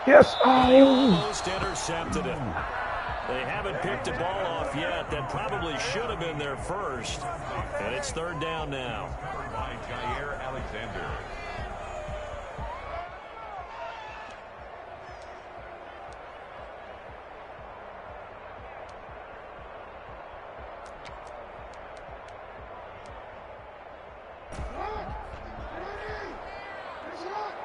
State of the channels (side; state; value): both; identical; correlation 1.00